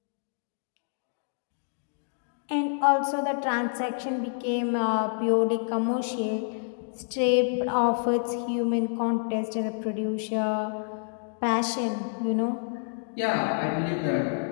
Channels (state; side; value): silent; right; digital silence